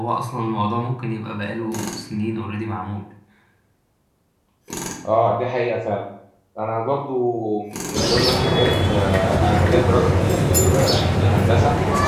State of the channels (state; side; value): identical; both; correlation 1.00